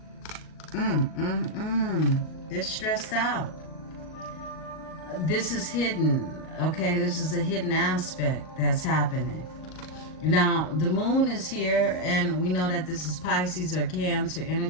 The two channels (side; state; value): right; late; 39 ms